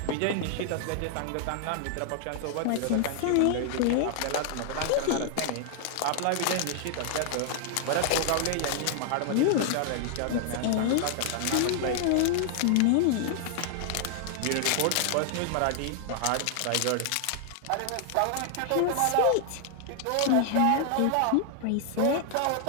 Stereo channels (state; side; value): different; both; correlation 0.00